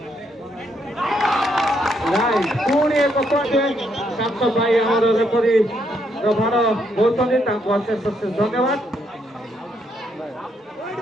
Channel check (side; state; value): both; normal; correlation 0.75